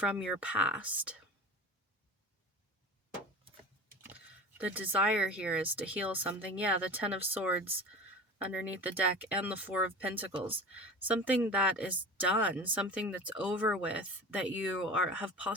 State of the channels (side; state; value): both; normal; correlation 0.35